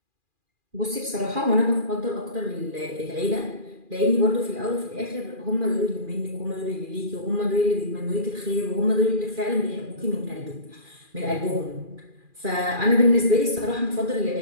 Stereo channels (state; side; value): late; left; 2.4 ms